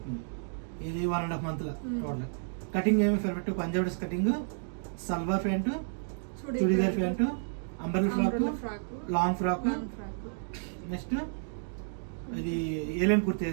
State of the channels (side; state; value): left; silent; digital silence